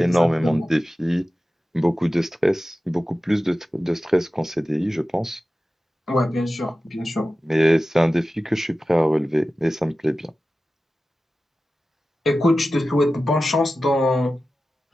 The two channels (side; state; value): both; normal; correlation 0.94